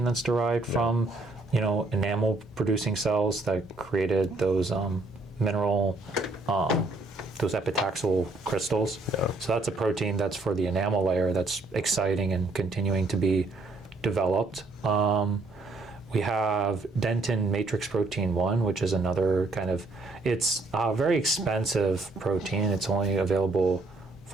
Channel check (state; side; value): quieter; left; 3.2 dB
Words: that's derived from, enamel producing cells that created those mineral, those epitaxial crystals. Yeah. So that's a protein that's for the enamel layer that's exciting and continuing to be developed. We have dentin matrix protein 1, which is another kind of, it's a very expensive protein. It's only available